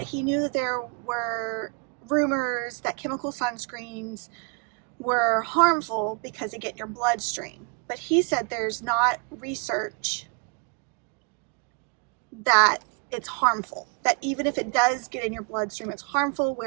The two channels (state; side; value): quieter; left; 35.2 dB